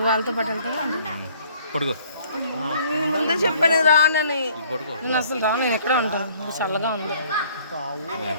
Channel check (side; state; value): both; inverted; correlation -0.58